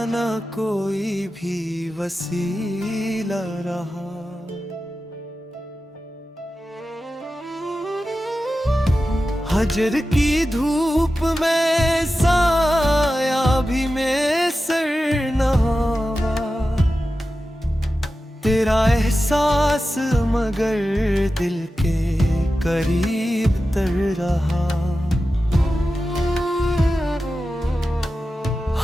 ना कोई भी वसीला रहा। हजर की धूप में साया भी में सर नहावा, तेरा एहसास मगर दिल के करीब तर रहा।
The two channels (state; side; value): normal; both; correlation 0.93